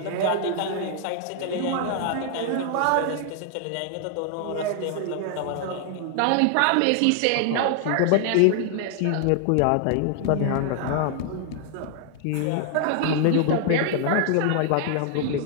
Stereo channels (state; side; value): different; both; correlation 0.00